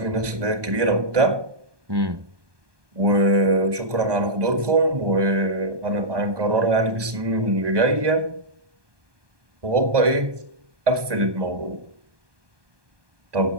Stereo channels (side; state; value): left; late; 1.2 ms